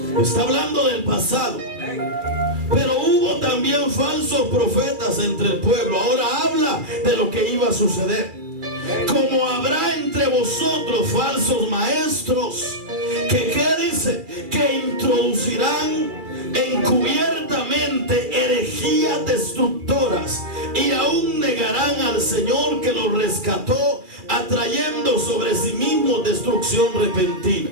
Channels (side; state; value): left; late; 2.4 ms